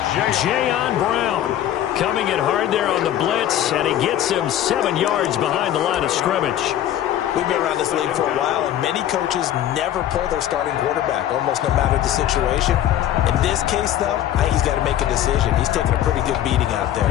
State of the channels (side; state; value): right; quieter; 11.8 dB